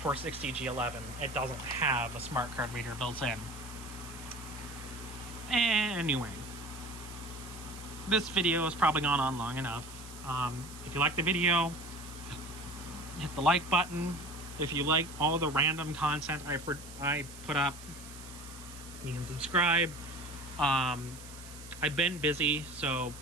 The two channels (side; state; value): right; noise; hiss, 16 dB below the sound